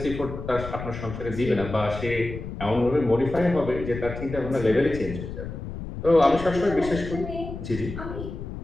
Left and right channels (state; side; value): noise; left; rumble, 9 dB below the sound